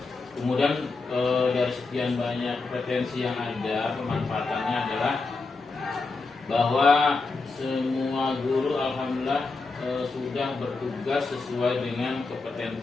Kemudian dari sekian banyak kompetensi yang ada, pemanfaatannya adalah bahwa semua guru alhamdulillah sudah bertugas sesuai dengan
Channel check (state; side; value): quieter; right; 3.9 dB